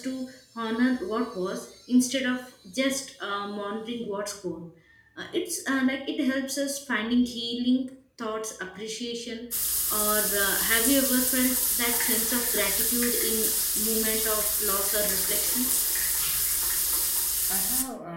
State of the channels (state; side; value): identical; both; correlation 1.00